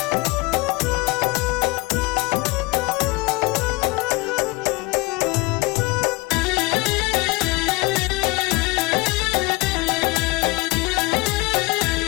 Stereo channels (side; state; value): right; quieter; 23.9 dB